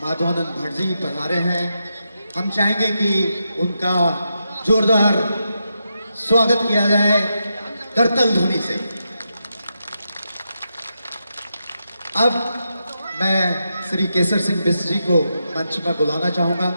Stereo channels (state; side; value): inverted; both; correlation -0.85